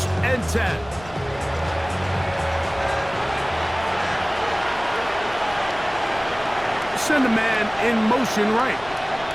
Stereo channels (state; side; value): noise; left; rumble, 19 dB below the sound